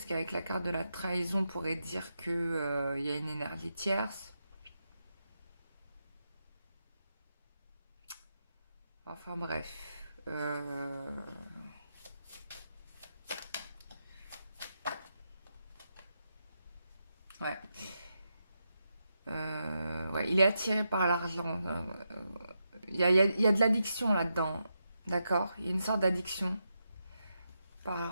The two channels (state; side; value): inverted; both; correlation -0.85